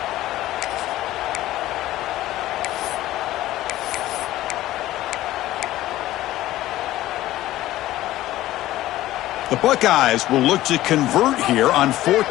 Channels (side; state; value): right; quieter; 15.3 dB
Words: The Buckeyes will look to convert here on 4th